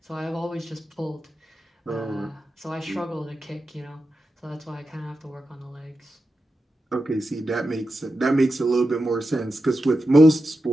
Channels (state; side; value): normal; both; correlation 0.90